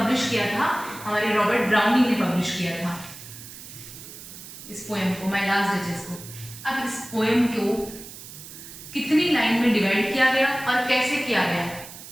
किया था, हमारे रॉबर्ट ब्राउनिंग ने पब्लिश किया था इस पोएम को, माय लास्ट डचेस को। अब इस पोएम को कितनी लाइन में डिवाइड किया गया और कैसे किया गया,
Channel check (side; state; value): right; noise; hiss, 14 dB below the sound